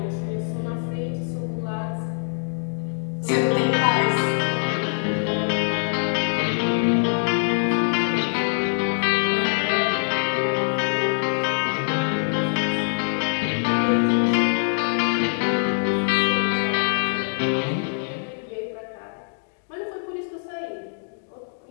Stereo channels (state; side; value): silent; right; digital silence